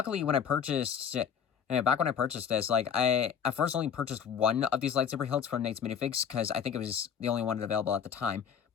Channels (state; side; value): quieter; right; 7.7 dB